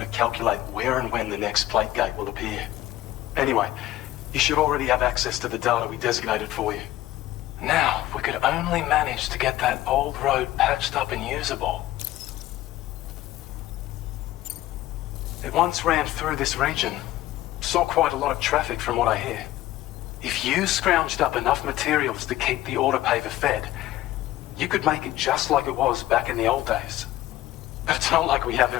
calculate where and when the next plate gate will appear. Anyway, you should already have access to the data we designated for you. Now, if we could only manage to get that old road patched up and usable. It once ran through this region. Saw quite a lot of traffic from what I hear. If you scrounged up enough materials to keep the autopaver fed, you could make it just like it was back in the old days. But it's not like we have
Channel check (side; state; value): right; quieter; 15.3 dB